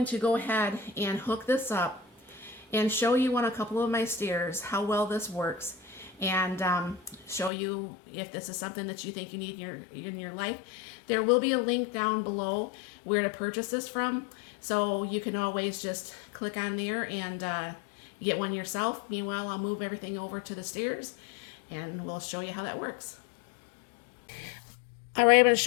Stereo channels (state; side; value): drops out; right; at 7.5 s